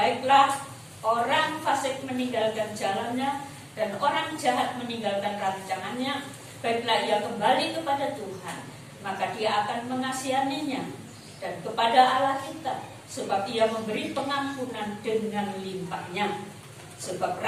orang fasik meninggalkan jalannya dan orang jahat meninggalkan rancangannya, baiklah ia kembali kepada Tuhan, maka dia akan mengasihaninya, dan kepada Allah kita, sebab ia memberi pengampunan dengan limpahnya. Sebab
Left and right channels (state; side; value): identical; both; correlation 1.00